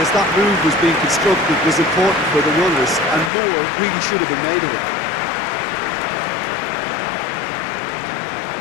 that move was being constructed was important for the runners, and more really should have been made of it.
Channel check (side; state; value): right; drops out; at 3.3 s